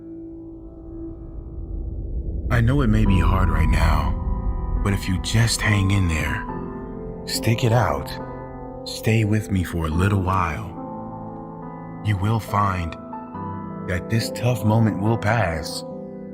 I know it may be hard right now, but if you just hang in there, stick it out, stay with me for a little while, you will find that this tough moment will pass.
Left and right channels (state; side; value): identical; both; correlation 1.00